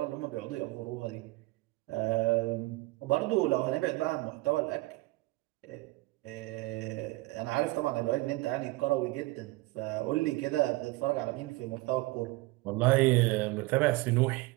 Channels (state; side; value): quieter; left; 21.6 dB